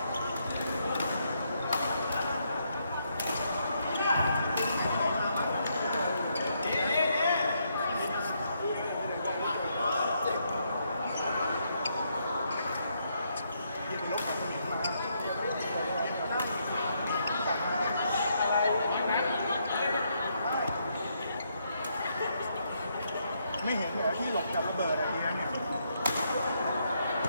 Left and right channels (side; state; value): both; inverted; correlation -0.76